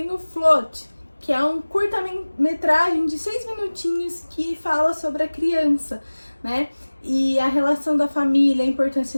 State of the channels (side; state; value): both; inverted; correlation -1.00